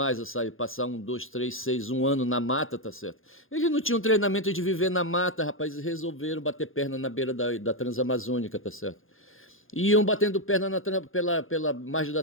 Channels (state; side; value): late; right; 0.59 ms